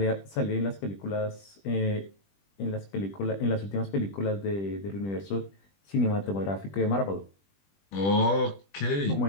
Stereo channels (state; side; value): late; right; 20 ms